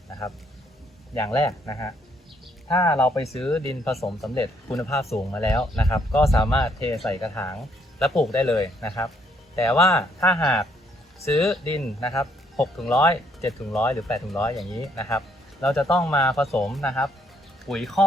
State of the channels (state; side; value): normal; both; correlation 0.70